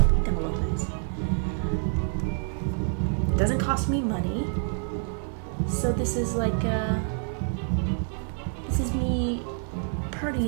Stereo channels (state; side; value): silent; left; 60 dB below the other